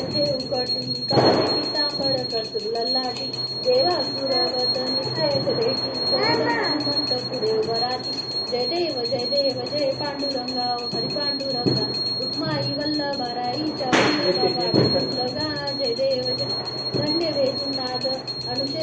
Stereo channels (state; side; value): identical; both; correlation 1.00